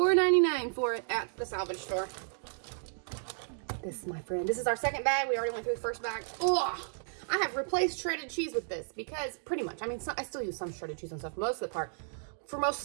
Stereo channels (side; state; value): left; silent; digital silence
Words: for it at the salvage store. This, my friend, this is our second bag. We already went through the first bag. Oh, I have replaced shredded cheese with this because pretty much, I mean, I still use some shredded cheese and stuff most of the part. For most